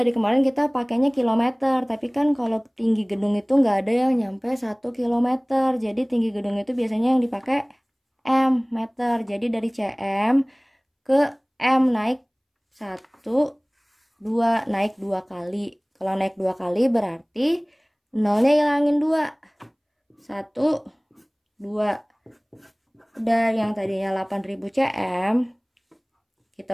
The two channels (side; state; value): both; identical; correlation 1.00